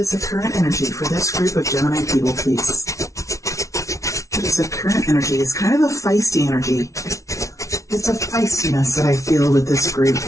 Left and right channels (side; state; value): right; late; 0.15 ms